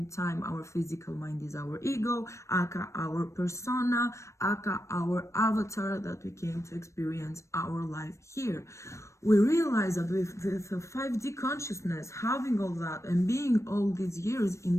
time our physical mind is our ego, aka our persona, aka our avatar that we came to experience our life here. We realize that with the 5D consciousness, having all that and being all these years in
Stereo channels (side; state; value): right; late; 0.14 ms